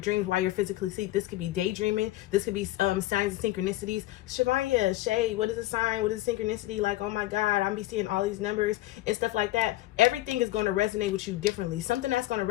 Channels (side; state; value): right; quieter; 16.4 dB